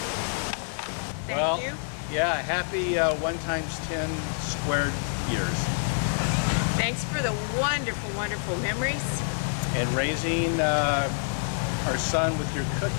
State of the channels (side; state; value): right; silent; 60 dB below the other